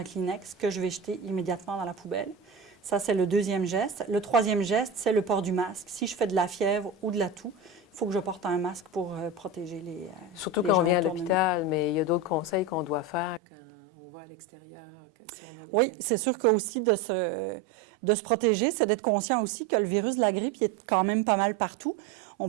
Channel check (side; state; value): left; drops out; at 13.4 s